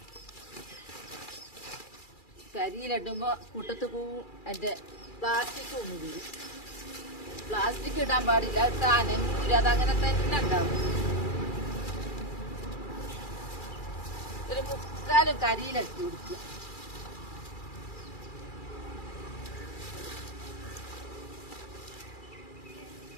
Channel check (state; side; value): late; right; 2.4 ms